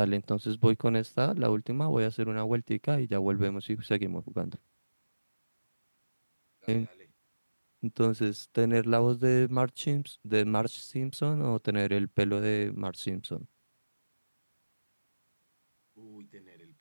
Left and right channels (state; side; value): inverted; both; correlation -1.00